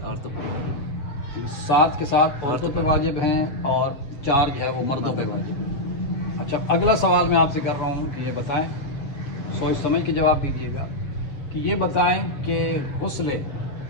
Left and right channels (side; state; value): right; late; 7.1 ms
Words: عورتوں پر واجب ہیں۔ 7 کے ساتھ عورتوں پہ واجب ہیں اور 4 جو ہے وہ مردوں پہ واجب ہیں۔ اچھا، اگلا سوال میں آپ سے کر رہا ہوں کہ یہ بتائیں، سوچ سمجھ کے جواب دیجیے گا کہ یہ بتائیں کہ غسل